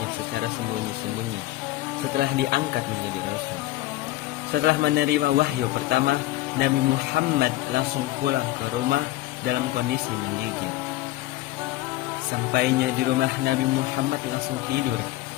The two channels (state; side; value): quieter; right; 16.7 dB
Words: secara sembunyi-sembunyi setelah diangkat menjadi Rasul. Setelah menerima wahyu pertama, Nabi Muhammad langsung pulang ke rumah dalam kondisi menggigil. Sampainya di rumah, Nabi Muhammad langsung tidur